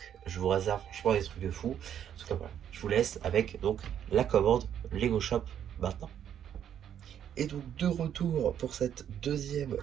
Je vous réserve franchement des trucs de fou. En tout cas, voilà, je vous laisse avec donc la commande Lego Shop maintenant. Et donc de retour pour cette deuxième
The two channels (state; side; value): quieter; left; 9.6 dB